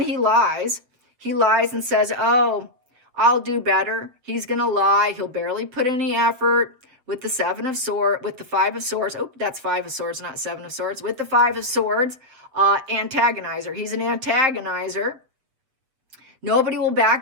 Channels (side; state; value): left; late; 7.6 ms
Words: he lies. He lies and says, oh, I'll do better. He's going to lie. He'll barely put any effort. With the 7 of Swords, with the 5 of Swords. Oh, that's 5 of Swords, not 7 of Swords. With the 5 of Swords, antagonizer. He's an antagonizer. Nobody will